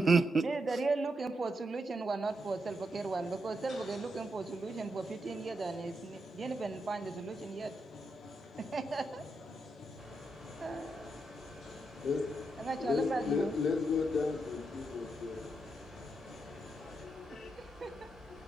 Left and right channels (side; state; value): both; normal; correlation 0.83